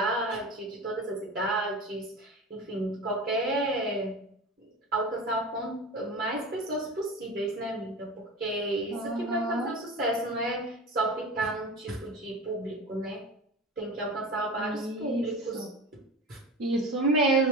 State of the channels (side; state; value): both; normal; correlation 0.31